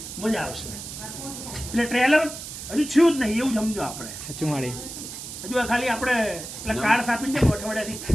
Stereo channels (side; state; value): right; noise; hiss, 10 dB below the sound